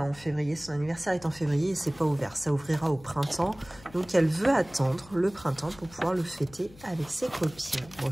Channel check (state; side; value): noise; left; hum, 22 dB below the sound